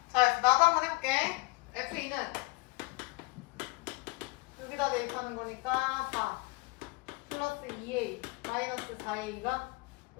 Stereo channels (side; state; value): right; quieter; 26.2 dB